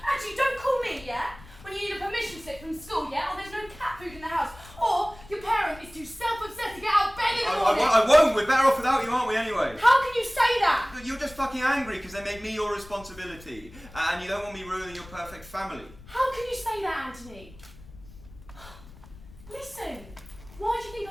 Actually, don't call me, yeah? When you need a permission slip from school, yeah? Or there's no cat food in the house. Or your parent is too self-obsessed to get out of bed in the morning. I won't. We're better off without you, aren't we, anyway? How can you say that? You're just fucking angry because they made me your responsibility. And you don't want me ruining your perfect family. How can you say that, Anthony? Listen, why do you think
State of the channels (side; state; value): left; noise; rumble, 20 dB below the sound